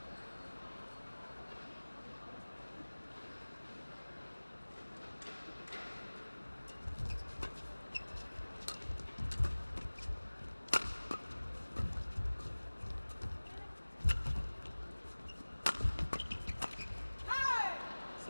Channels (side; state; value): both; inverted; correlation -1.00